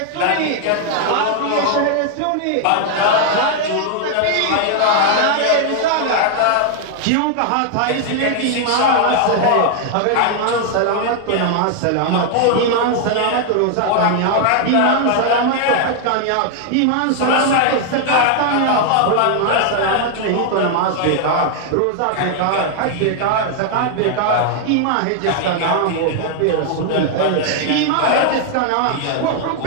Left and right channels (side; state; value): both; different; correlation 0.00